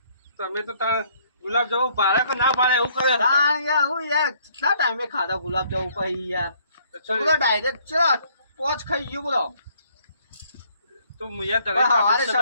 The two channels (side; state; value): both; inverted; correlation -0.64